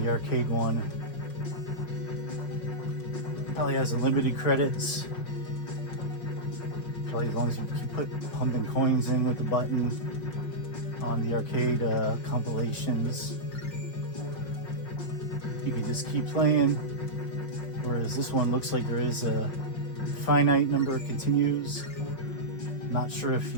the arcade one probably has unlimited credits. Probably as long as you keep pumping coins in with the button on the arcade compilations, you can just keep playing. Whereas this one looks like there is a finite number of continues. Not sure if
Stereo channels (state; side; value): late; right; 5.6 ms